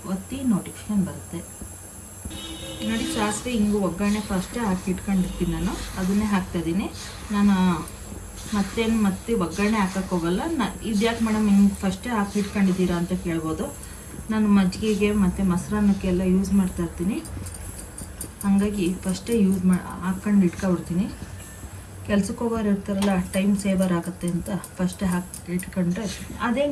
ಒತ್ತಿ ನೋಟಿಫಿಕೇಶನ್ ಬರುತ್ತೆ. ನೋಡಿ ಸಾಸಿವೆ ಹಿಂಗು ಒಗ್ಗರಣೆ ಫಸ್ಟೇ ಹಾಕಿ ಇಟ್ಕೊಂಡಿರ್ತೀನಿ ನಾನು. ಅದನ್ನೇ ಹಾಕ್ತಾಯಿದ್ದೀನಿ ನಾನು. ಮತ್ತೆ ಒಗ್ಗರಣೆ ಹಾಕಕ್ಕೆ ಹೋಗಲ್ಲ. ಇದ್ಯಾಕೆ ಮೇಡಮ್ ಹಿಂಗೆ ಫಸ್ಟೇ ಹಾಕಿ ಇಟ್ಕೊಂಡಿದ್ದೀರಾ ಅಂತ ಕೇಳ್ಬೋದು. ನಾನು ಮಜ್ಜಿಗೆಗೆ ಮತ್ತು ಮೊಸರನ್ನಕ್ಕೆಲ್ಲ ಯೂಸ್ ಮಾಡ್ತಾಯಿರ್ತೀನಿ. ಹಾಗಾಗಿ ಫಸ್ಟೇ ಹಾಕ್ಕೊಂಡು ಇಟ್ಕೊಬಿಡ್ತೀನಿ. ಕೆಲ್ಸಕ್ಕೆ ಹೋಗೋರು ಇರ್ತಾರಲ್ಲ, ಟೈಮ್ ಸೇವರ್ ಆಗುತ್ತೆ ಅಂತ ಫಸ್ಟೇ ಹಾಕಿ ಇಟ್ಕೊಂಡ್ರೆ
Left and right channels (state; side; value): identical; both; correlation 1.00